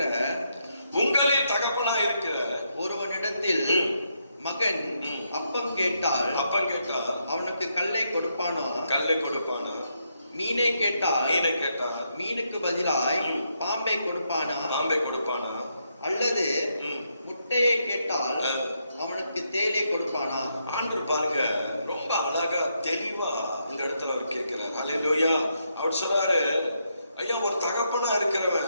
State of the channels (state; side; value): inverted; both; correlation -0.79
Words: ஒருவனிடத்தில் மகன் அப்பம் கேட்டால் அவனுக்கு கல்லை கொடுப்பானா? மீனை கேட்டால் மீனுக்கு பதிலாய் பாம்பை கொடுப்பானா? அல்லது முட்டையை கேட்டால் அவனுக்கு தேலை கொடுப்பானா? ஆண்டவர் பாருங்க ரொம்ப அழகா தெளிவா இந்த இடத்துல அவர் கேட்கிறார். ஹல்லேலூயா. அவர் சொல்றாரு, ஐயா ஒரு தகப்பனா